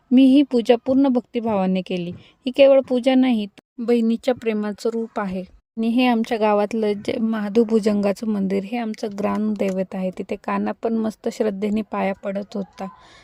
मी ही पूजा पूर्ण भक्तिभावाने केली. ही केवळ पूजा नाही, बहिणीच्या प्रेमाचं रूप आहे. आणि हे आमच्या गावातलं महादेव भुजंगाचं मंदिर, हे आमचं ग्रामदैवत आहे. तिथे काना पण मस्त श्रद्धेने पाया पडत होता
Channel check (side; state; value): both; identical; correlation 1.00